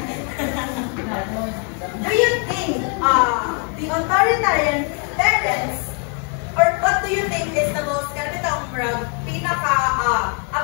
Do you think the authoritarian parents, or what do you think is the most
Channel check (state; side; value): quieter; right; 38.4 dB